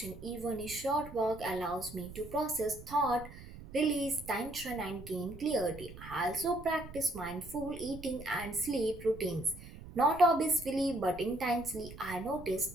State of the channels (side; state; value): right; noise; rumble, 14 dB below the sound